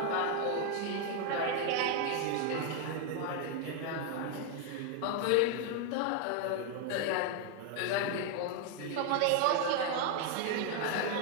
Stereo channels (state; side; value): different; both; correlation 0.00